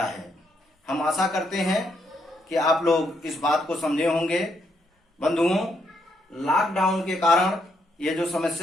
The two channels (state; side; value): normal; both; correlation 0.76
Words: हम आशा करते हैं कि आप लोग इस बात को समझे होंगे। बंधुओं, लॉकडाउन के कारण ये जो